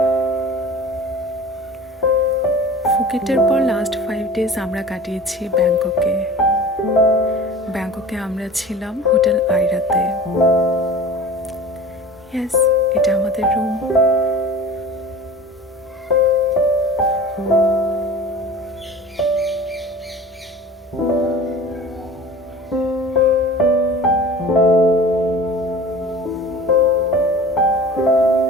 ফুকেটের পর last 5 days আমরা কাটিয়েছি ব্যাংককে আমরা ছিলাম হোটেল আইরাতে। ইয়েস, এটা আমাদের রুম।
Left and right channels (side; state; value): both; normal; correlation 0.39